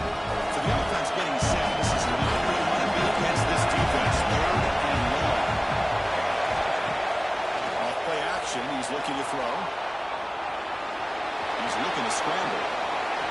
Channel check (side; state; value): both; identical; correlation 1.00